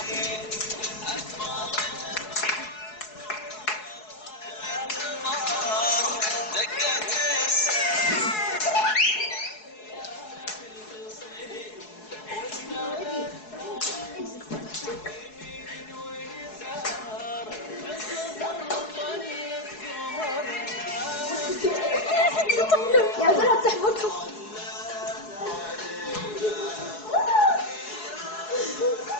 يا بنات تحبطكم.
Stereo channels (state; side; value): late; right; 4.7 ms